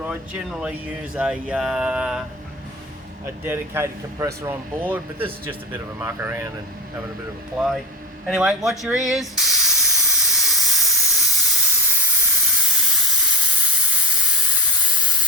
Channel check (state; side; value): normal; both; correlation 0.18